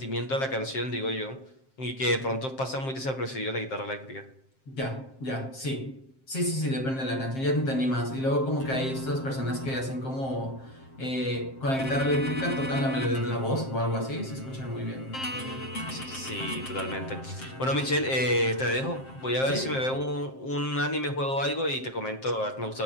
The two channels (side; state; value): right; late; 7.6 ms